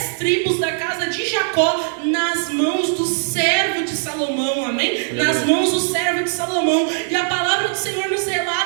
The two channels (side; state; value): left; silent; digital silence